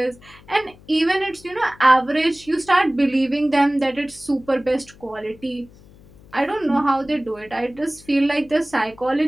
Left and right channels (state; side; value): noise; left; hum, 24 dB below the sound